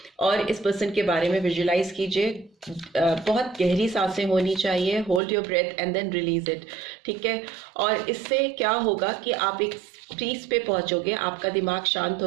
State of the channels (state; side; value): drops out; left; at 5.2 s